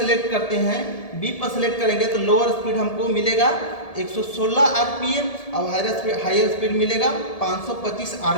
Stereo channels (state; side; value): late; right; 1.7 ms